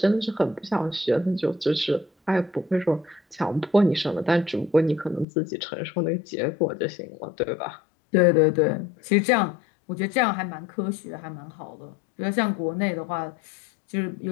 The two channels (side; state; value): right; drops out; at 5.2 s